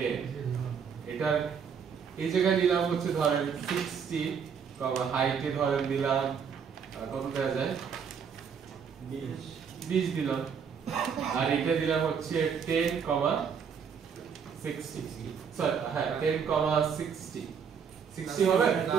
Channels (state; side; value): quieter; left; 6.9 dB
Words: এটার এই জায়গায় নিলাম হচ্ছে ধরেন 60, হাইটে ধরেন দিলাম কত দেওয়া যায় 20 দিলাম আর এটা দিলাম হচ্ছে 10, 60 সরি হ্যাঁ 10, 60 60 হবে